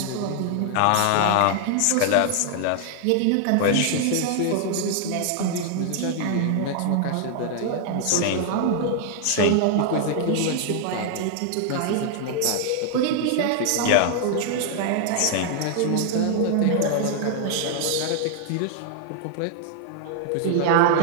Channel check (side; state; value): both; different; correlation 0.00